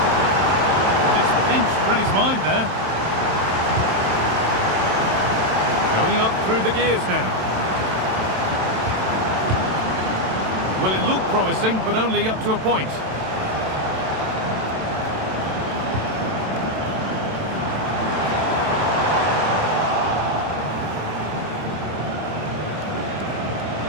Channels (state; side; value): late; left; 27 ms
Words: And it's pinched Reddy's mind there. Going up through the gears now. Well, it looked promising, but only up to a point.